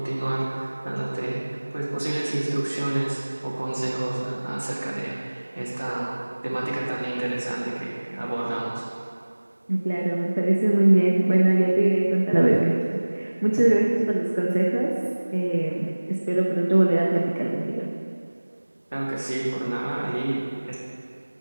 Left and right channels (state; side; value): inverted; both; correlation -1.00